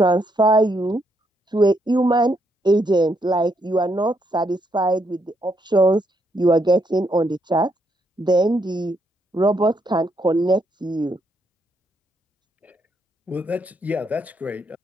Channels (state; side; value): normal; both; correlation 0.76